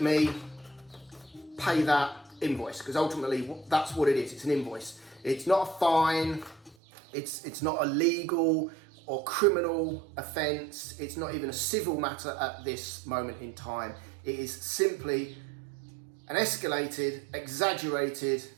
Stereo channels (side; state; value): left; drops out; at 6.8 s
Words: me pay that invoice, because ultimately that's what it is. It's an invoice. It's not a fine. It's not a legal or criminal offence. It's not even a civil matter at this moment in time. It is simply an escalated, exaggerated,